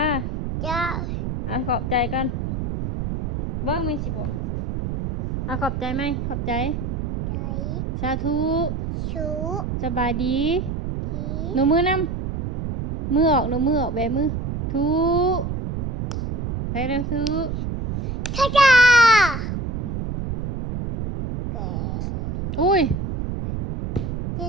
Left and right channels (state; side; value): noise; right; rumble, 2 dB below the sound